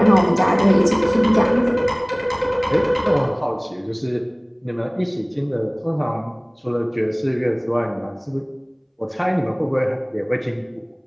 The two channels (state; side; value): identical; both; correlation 1.00